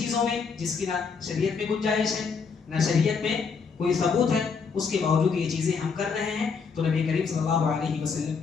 میں جس کی نہ شریعت میں گنجائش ہے نہ شریعت میں کوئی ثبوت ہے، اس کے باوجود یہ چیزیں ہم کر رہے ہیں تو نبی کریم صلی اللہ علیہ وسلم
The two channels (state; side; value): quieter; right; 5.4 dB